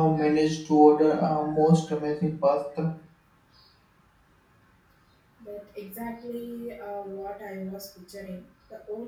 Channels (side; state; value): both; identical; correlation 1.00